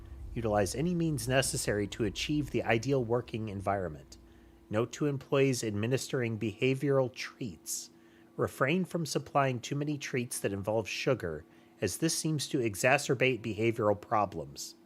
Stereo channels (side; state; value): both; identical; correlation 1.00